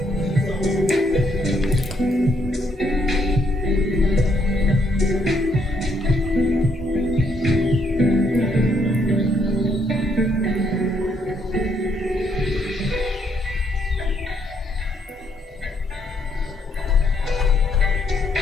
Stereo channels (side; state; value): both; normal; correlation 0.72